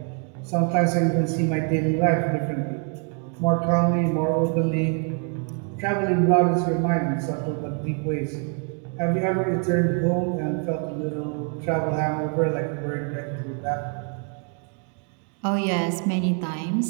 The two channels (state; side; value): quieter; left; 39.2 dB